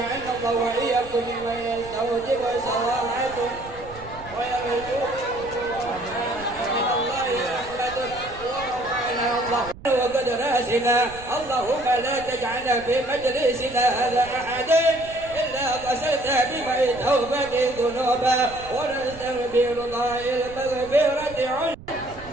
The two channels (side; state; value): right; noise; rumble, 17 dB below the sound